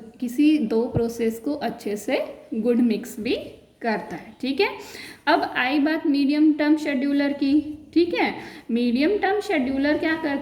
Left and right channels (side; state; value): both; identical; correlation 1.00